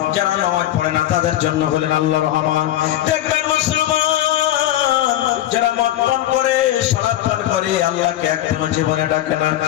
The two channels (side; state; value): right; quieter; 13.2 dB